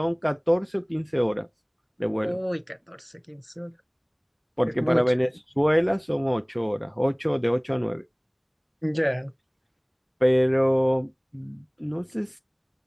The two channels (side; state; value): both; identical; correlation 1.00